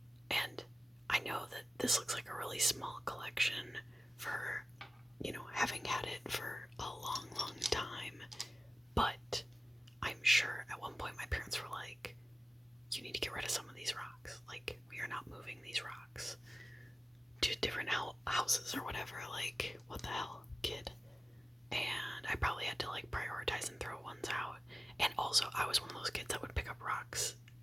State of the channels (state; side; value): normal; both; correlation 0.97